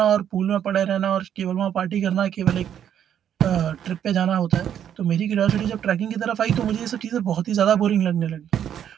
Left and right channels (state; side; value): quieter; left; 9.5 dB